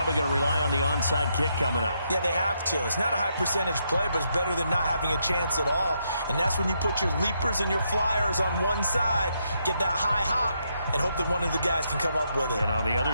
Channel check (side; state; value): both; inverted; correlation -0.78